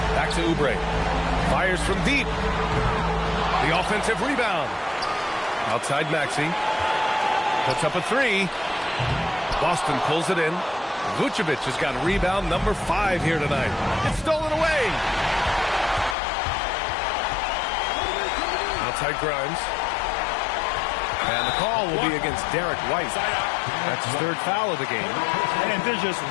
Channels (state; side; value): drops out; right; at 16.2 s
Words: Back to Oubre. Fires from deep. The offensive rebound. Outside Maxey. Puts up a 3. Boston pulls it in. Vucevic has got rebound number 5 here tonight. It's stolen away. Outside Grimes. And the call will be against Derek White. That's his 3rd foul of the game. And there's just